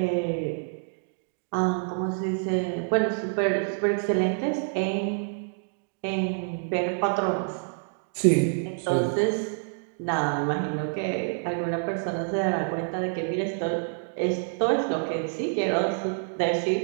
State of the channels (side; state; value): left; silent; digital silence